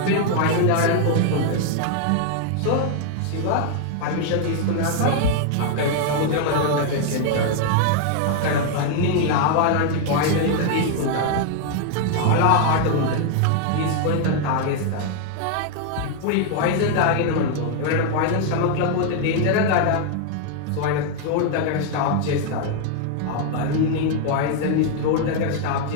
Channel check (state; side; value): different; both; correlation 0.00